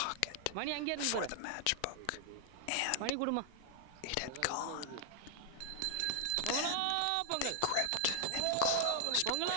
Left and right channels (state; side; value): different; both; correlation -0.01